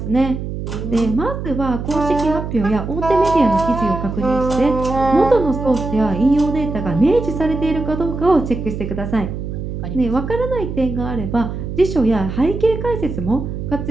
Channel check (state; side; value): noise; right; hum, 6 dB below the sound